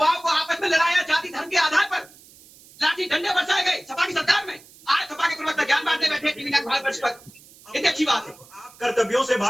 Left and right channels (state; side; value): noise; right; hiss, 24 dB below the sound